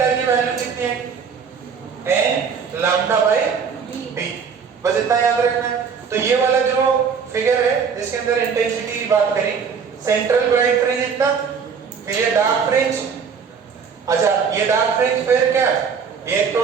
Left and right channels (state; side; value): quieter; left; 6.3 dB